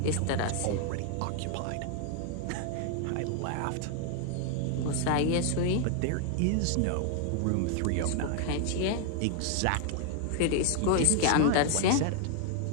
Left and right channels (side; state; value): both; different; correlation 0.00